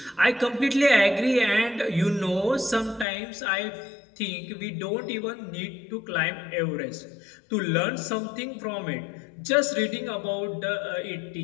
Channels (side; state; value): right; drops out; at 3.1 s